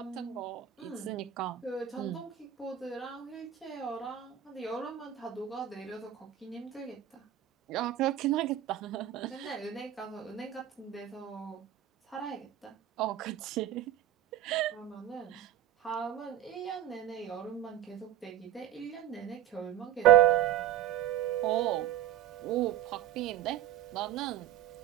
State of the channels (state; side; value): quieter; left; 11.6 dB